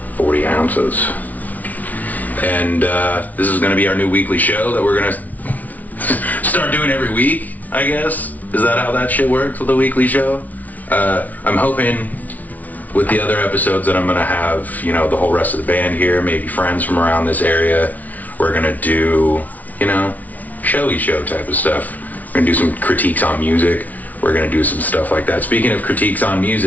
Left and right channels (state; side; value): late; right; 0.075 ms